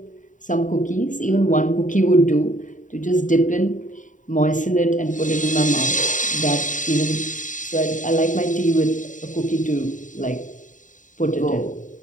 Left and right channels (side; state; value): right; late; 0.37 ms